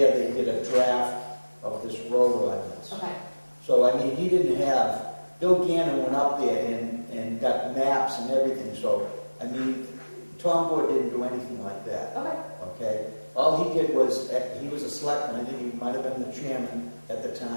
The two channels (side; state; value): both; inverted; correlation -1.00